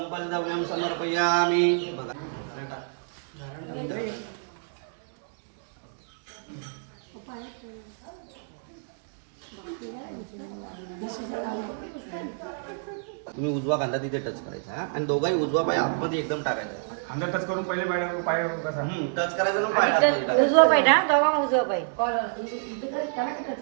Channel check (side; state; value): left; silent; digital silence